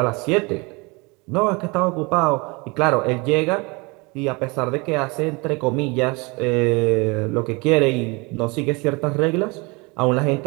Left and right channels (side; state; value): left; quieter; 27.5 dB